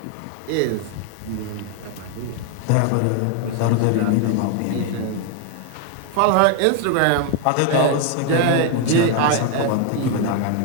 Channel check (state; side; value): different; both; correlation 0.01